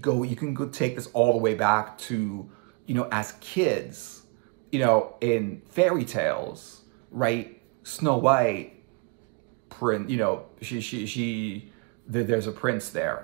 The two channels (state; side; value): quieter; left; 29.7 dB